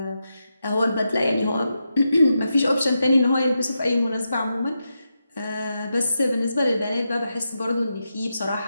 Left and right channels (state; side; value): inverted; both; correlation -0.87